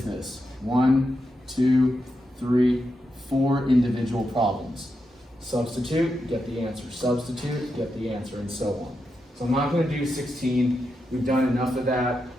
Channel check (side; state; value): both; normal; correlation 0.86